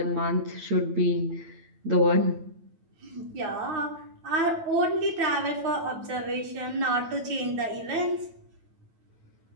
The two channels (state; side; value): late; left; 9.1 ms